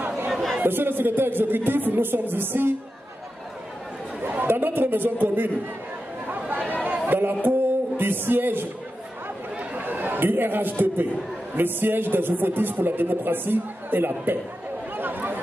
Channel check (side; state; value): both; normal; correlation 0.91